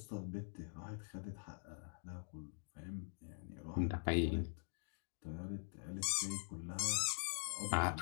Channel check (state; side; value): silent; right; digital silence